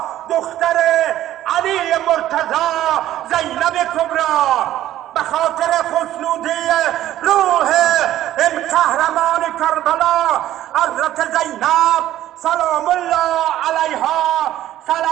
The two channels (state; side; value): quieter; left; 13.3 dB